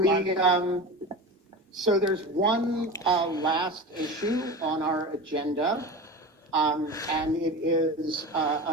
So there's one last issue on our agenda. And it is,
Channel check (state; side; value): normal; both; correlation 0.29